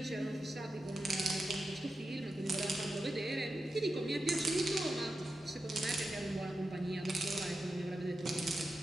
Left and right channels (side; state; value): both; normal; correlation 0.90